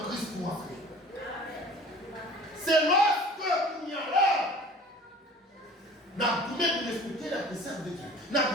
Christ pour entrer. C'est lorsque il y a là, nous pouvons respecter la précepte de Dieu. Nous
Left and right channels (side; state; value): both; normal; correlation 0.45